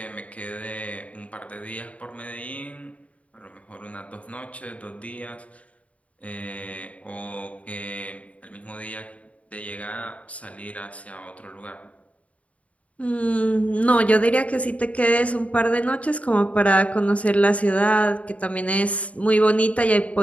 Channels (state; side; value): late; right; 0.066 ms